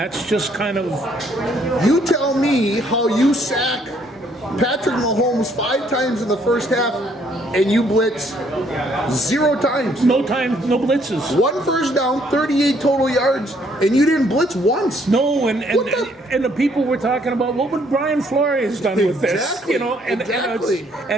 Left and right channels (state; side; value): normal; both; correlation 0.66